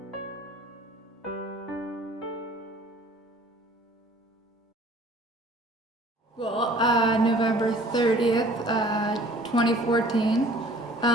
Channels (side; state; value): both; normal; correlation 0.51